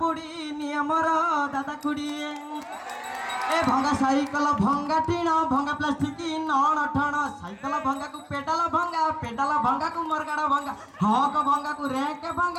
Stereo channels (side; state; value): both; identical; correlation 1.00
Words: नियमर दादा खुड़ी ए भंगा साइकल भंगा टीण भंगा प्लास्टिक नण ठण साइकल भंगा को पेडाल भंगा को मरगाड़ भंगा हक भंगा को रैंक